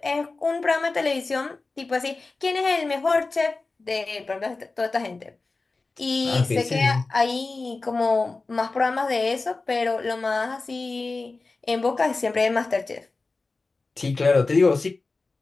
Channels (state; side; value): quieter; right; 3.7 dB